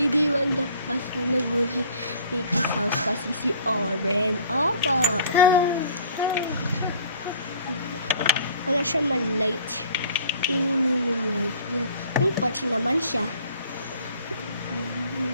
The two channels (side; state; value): both; inverted; correlation -0.52